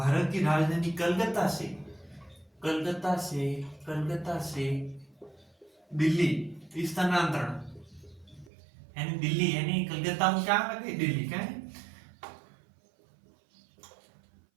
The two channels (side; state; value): left; drops out; at 8.5 s